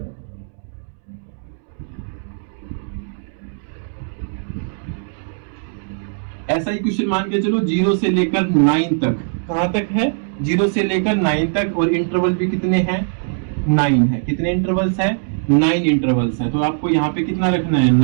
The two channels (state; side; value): silent; left; 66 dB below the other